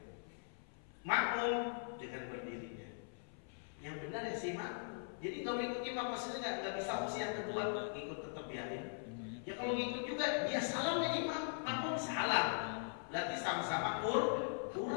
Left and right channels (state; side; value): silent; right; 50 dB below the other